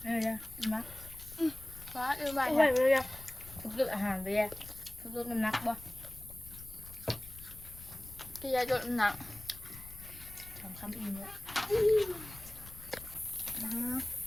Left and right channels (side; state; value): left; noise; rumble, 16 dB below the sound